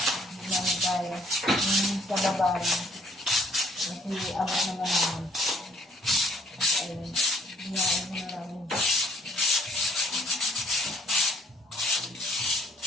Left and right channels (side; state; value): both; normal; correlation 0.63